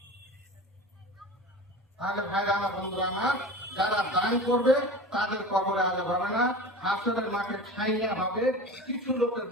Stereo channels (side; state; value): both; normal; correlation 0.34